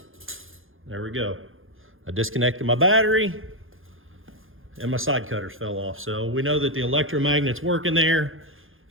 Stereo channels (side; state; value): left; late; 0.59 ms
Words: There we go. I disconnected my battery and my side cutters fell off. So we know that the electromagnet's working there.